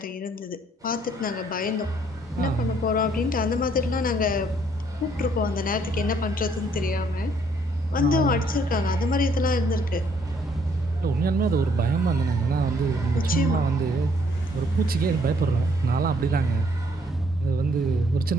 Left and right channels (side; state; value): both; normal; correlation 0.66